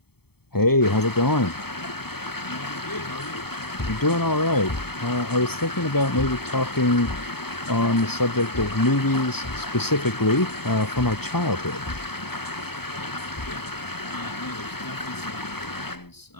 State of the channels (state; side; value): late; right; 0.96 ms